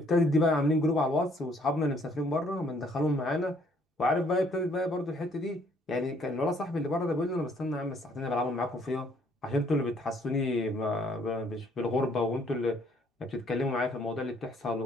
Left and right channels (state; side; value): normal; both; correlation 0.64